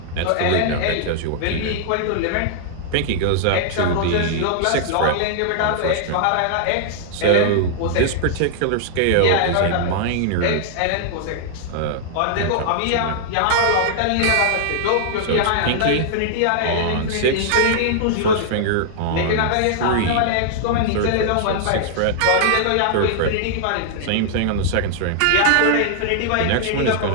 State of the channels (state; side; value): different; both; correlation -0.01